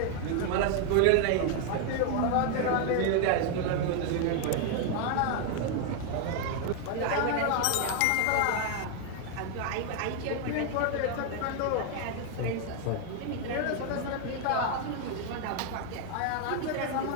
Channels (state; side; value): different; both; correlation 0.01